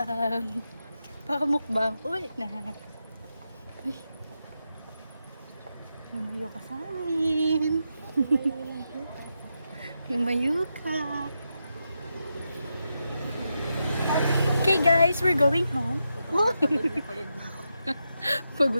Pakamukbang. Ulit na. Uy. Lumayo ka sa amin. Lumayo ka. Okay guys, we're going home. Pagod na ako.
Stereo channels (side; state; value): both; inverted; correlation -0.86